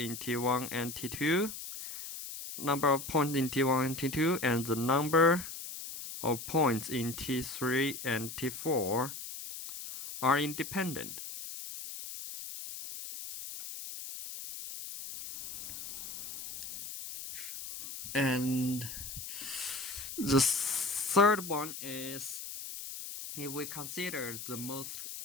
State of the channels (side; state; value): left; noise; hiss, 9 dB below the sound